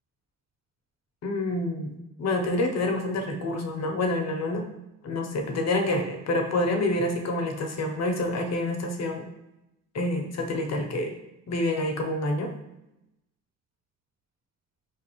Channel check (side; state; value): both; normal; correlation 0.21